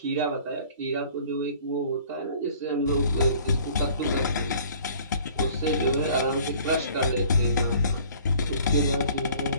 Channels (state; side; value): inverted; both; correlation -0.52